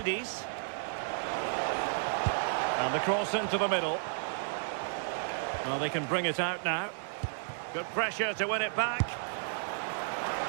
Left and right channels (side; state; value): left; silent; digital silence